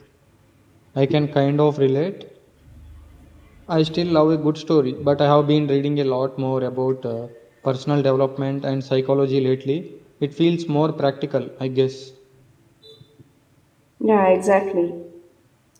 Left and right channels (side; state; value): both; identical; correlation 1.00